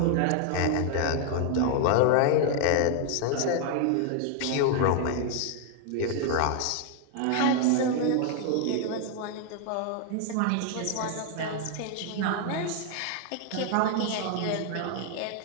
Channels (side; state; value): both; different; correlation 0.00